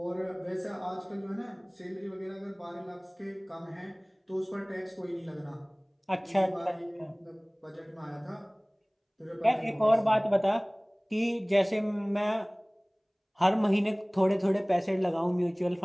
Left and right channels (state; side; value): identical; both; correlation 1.00